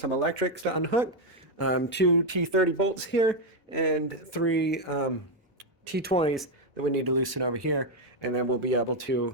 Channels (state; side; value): normal; both; correlation 0.03